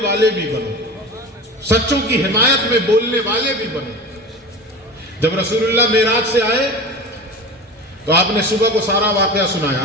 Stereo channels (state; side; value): normal; both; correlation 0.32